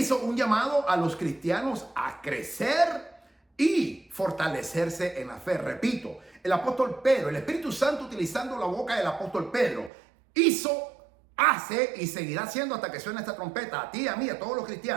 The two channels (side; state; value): left; drops out; at 9.9 s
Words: un llamado a los cristianos a crecer y fortalecerse en la fe. Repito, el apóstol Pedro, el Espíritu Santo, utilizando la boca del apóstol Pedro, hace y seguirá haciendo hasta que suene esta trompeta, a ti, a mí, a todos los